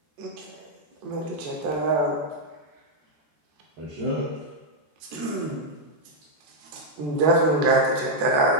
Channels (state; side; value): late; left; 14 ms